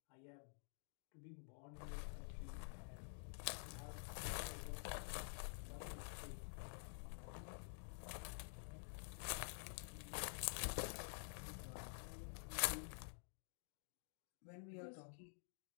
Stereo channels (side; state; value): right; silent; digital silence